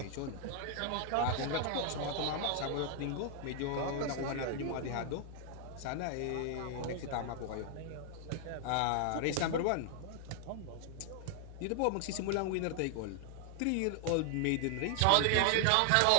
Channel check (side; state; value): both; different; correlation 0.00